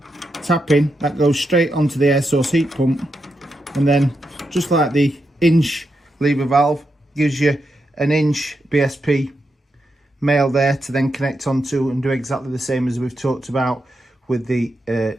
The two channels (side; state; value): both; normal; correlation 0.85